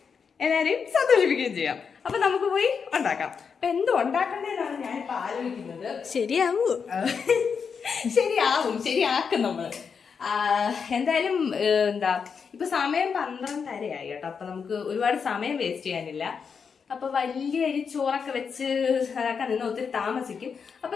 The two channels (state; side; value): quieter; right; 6.1 dB